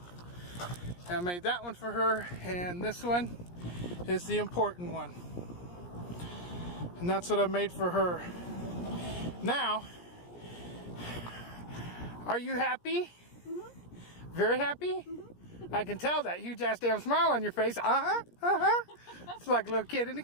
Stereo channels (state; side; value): late; right; 17 ms